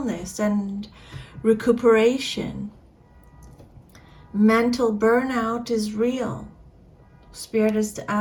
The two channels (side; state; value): both; identical; correlation 1.00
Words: and recuperation. Mental burnout is real. Spirit is